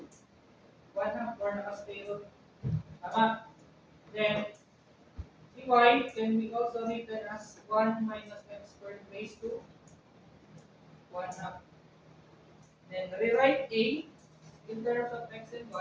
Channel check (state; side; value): identical; both; correlation 1.00